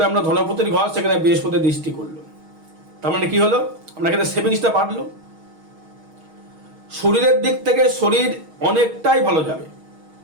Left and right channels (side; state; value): left; late; 6.4 ms